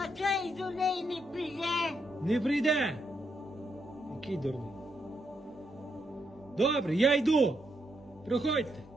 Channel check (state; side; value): normal; both; correlation 0.79